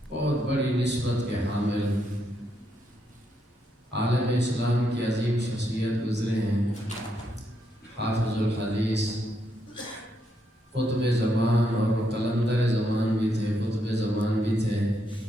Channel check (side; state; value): both; normal; correlation 0.78